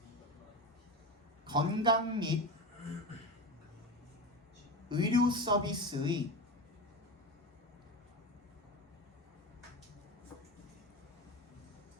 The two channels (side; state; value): both; normal; correlation 0.23